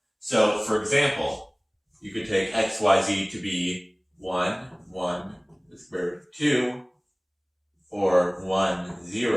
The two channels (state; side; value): identical; both; correlation 1.00